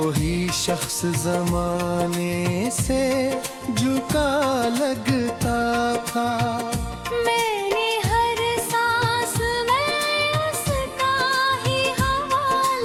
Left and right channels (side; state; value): both; identical; correlation 1.00